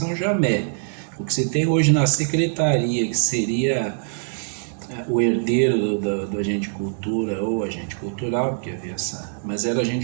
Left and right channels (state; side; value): silent; left; 62 dB below the other